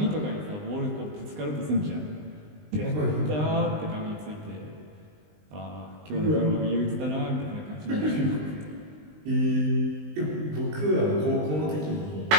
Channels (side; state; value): left; late; 20 ms